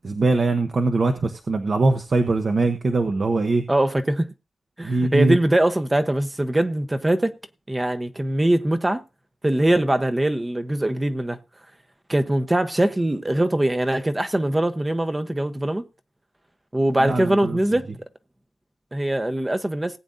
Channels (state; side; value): normal; both; correlation 0.97